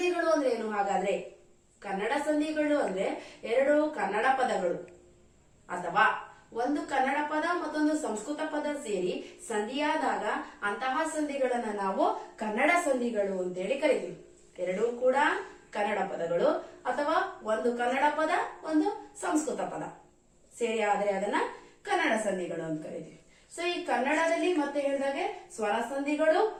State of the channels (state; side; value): identical; both; correlation 1.00